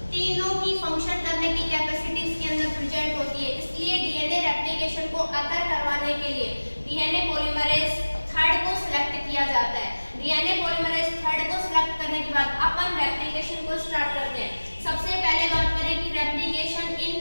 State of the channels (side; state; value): both; inverted; correlation -1.00